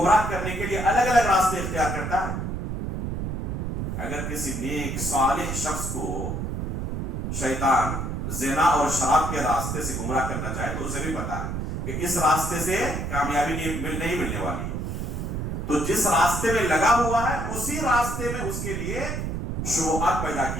کرنے کے لیے الگ الگ راستے اختیار کرتا ہے. اگر کسی نیک صالح شخص کو شیطان زنا اور شراب کے راستے سے گمراہ کرنا چاہے تو اسے بھی پتا ہے کہ اس راستے سے کامیابی نہیں ملنے والی. تو جس راستے میں لگا ہوا ہے اسی راستے میں اس کے لیے شبہات پیدا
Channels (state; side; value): noise; right; rumble, 3 dB below the sound